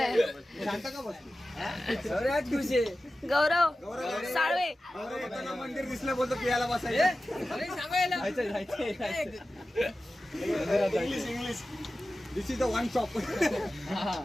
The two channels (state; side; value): normal; both; correlation 0.94